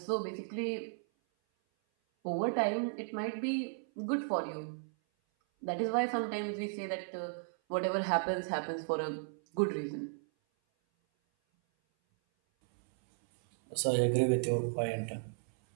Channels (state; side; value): silent; left; 55 dB below the other